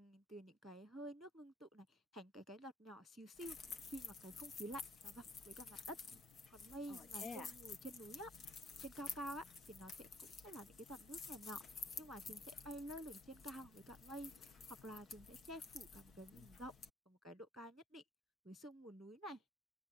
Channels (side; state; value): both; normal; correlation 0.62